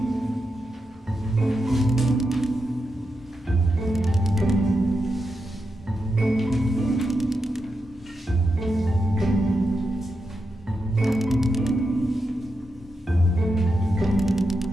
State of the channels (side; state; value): both; normal; correlation 0.86